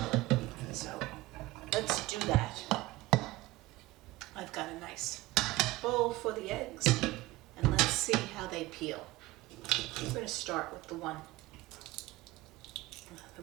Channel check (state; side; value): quieter; left; 19.0 dB